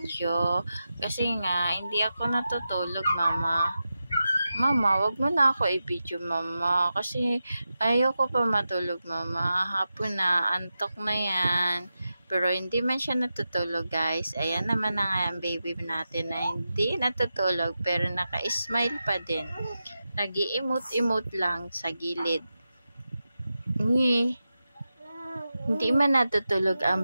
Kasi nga, hindi ako natutulog mama. Mama, wag mo na ako i-video mama. Kasi ayoko pa matulog mama. Hapon na, antok na yan. Pero hindi man siya natutulog guys. Ayan naman na nga ang baby natin na hindi natutulog pero naka-smile pa din. Nag-i-emote-emote lang sa gilid. Hindi man natutulog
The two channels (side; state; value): both; inverted; correlation -0.91